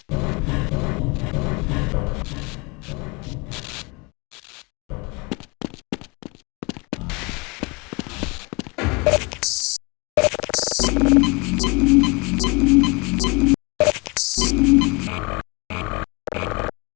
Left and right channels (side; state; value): right; quieter; 28.3 dB